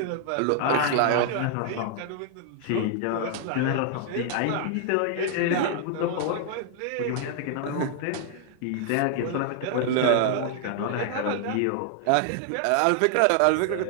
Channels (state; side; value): different; both; correlation 0.00